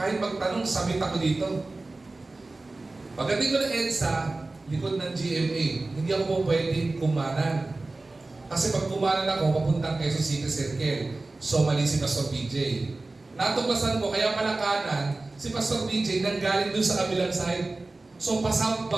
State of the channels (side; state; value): left; quieter; 3.2 dB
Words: magtanong, sabit ako dito. Pagdating ko ng EDSA, likod ng GMA, hindi ako po pwedeng kumanan. Kasi pag kumanan ako, papuntang Quezon City Circle. So mali si Pastor BJ. Natuklasan ko, kaya pala kanan, si Pastor BJ nanggaling doon sa kabilang side. So